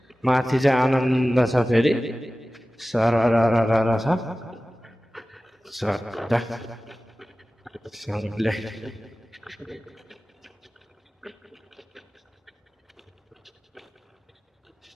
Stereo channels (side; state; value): both; normal; correlation 0.96